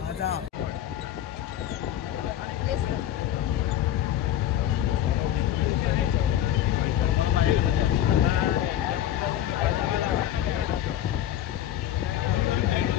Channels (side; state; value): right; quieter; 11.6 dB